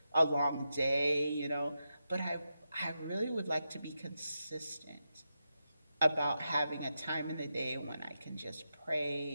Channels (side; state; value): both; inverted; correlation -0.87